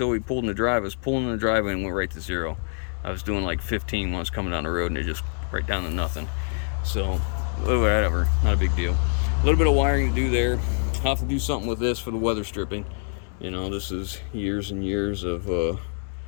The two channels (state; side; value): silent; right; 61 dB below the other